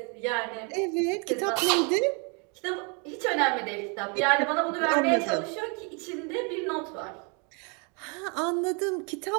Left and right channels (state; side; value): quieter; left; 34.5 dB